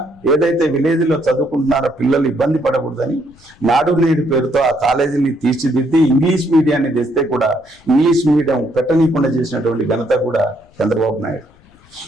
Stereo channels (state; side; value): noise; left; rumble, 29 dB below the sound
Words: ఏదైతే విలేజ్ లో చదువుకుంటున్నారో పిల్లలు ఇబ్బంది పడకూడదని నాడు నేడు పేరుతో ఆ కాలేజీని తీర్చిదిద్ది ఇంగ్లీష్ మీడియాన్ని తెస్తే కూడా ఇంగ్లీష్ మీడియం పెట్టనీయకుండా చేసినటువంటి ఘనత కూడా చంద్రబాబు నాయుడు.